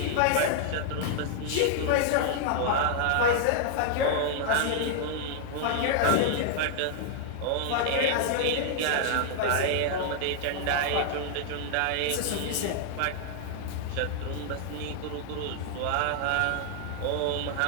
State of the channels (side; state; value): both; different; correlation 0.00